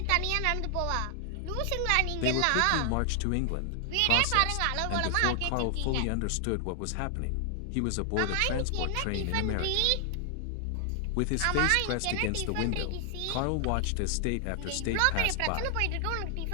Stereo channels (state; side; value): different; both; correlation 0.00